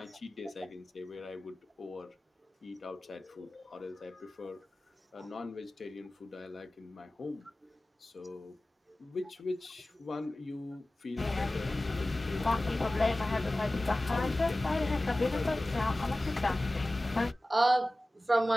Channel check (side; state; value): both; normal; correlation 0.97